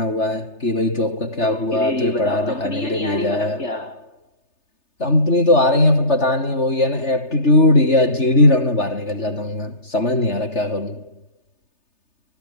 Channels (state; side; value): late; right; 3.3 ms